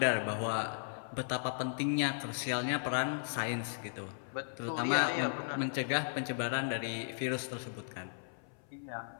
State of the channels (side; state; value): right; silent; 54 dB below the other